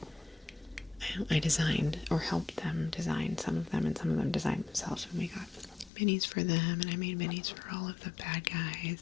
I designed or helped them design some of them, and some of them designed themselves, and we got minis for them, and I made minis for all of the bad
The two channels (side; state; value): right; drops out; at 5.9 s